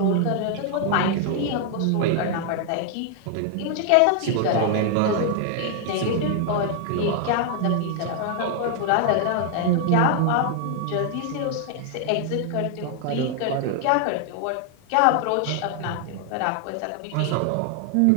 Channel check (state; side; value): different; both; correlation 0.00